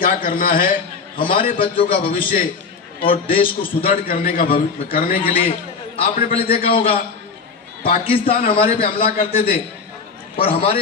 करना है, हमारे बच्चों का भविष्य और देश को सुदृढ़ करने के लिए आपने पहले देखा होगा पाकिस्तान हमारे पे हमला करते थे और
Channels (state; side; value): quieter; right; 5.1 dB